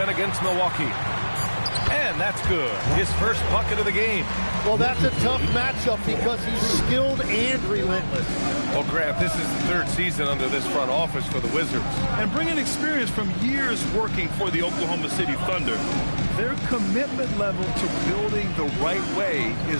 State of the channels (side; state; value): both; inverted; correlation -1.00